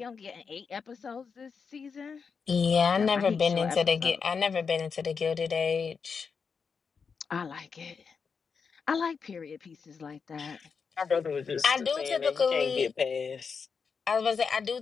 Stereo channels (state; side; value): quieter; right; 5.7 dB